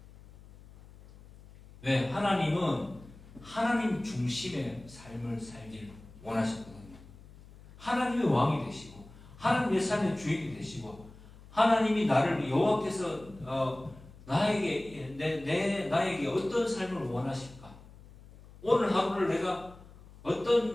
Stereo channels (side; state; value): left; noise; hum, 21 dB below the sound